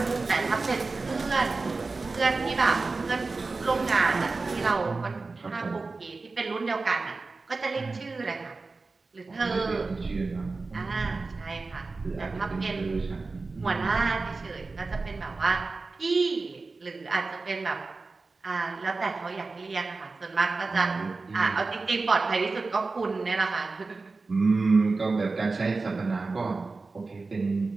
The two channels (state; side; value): quieter; left; 3.8 dB